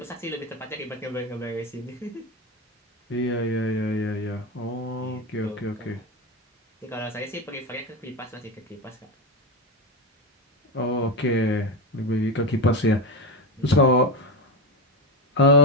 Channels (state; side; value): normal; both; correlation 0.15